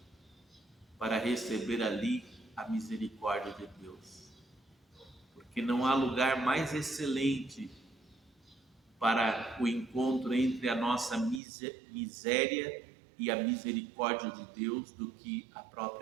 para receber ali a misericórdia de Deus. Porque não há lugar mais excelente para o encontro entre a nossa miséria e a misericórdia de Deus do que a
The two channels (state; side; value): drops out; left; at 11.4 s